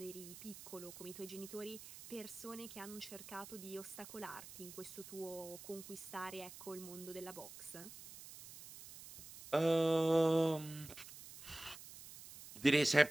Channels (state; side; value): noise; right; hiss, 14 dB below the sound